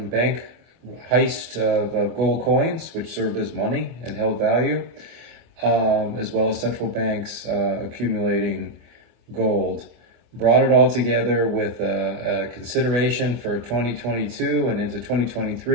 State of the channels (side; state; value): left; late; 24 ms